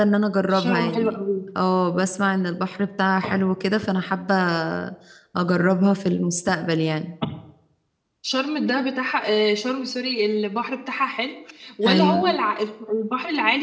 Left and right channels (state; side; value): identical; both; correlation 1.00